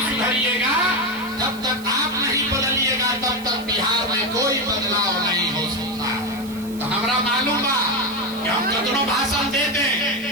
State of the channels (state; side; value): noise; right; hiss, 19 dB below the sound